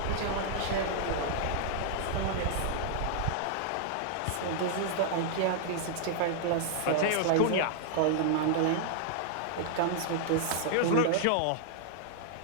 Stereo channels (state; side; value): different; both; correlation -0.01